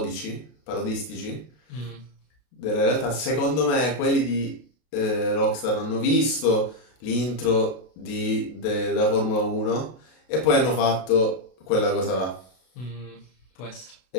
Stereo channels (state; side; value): late; right; 32 ms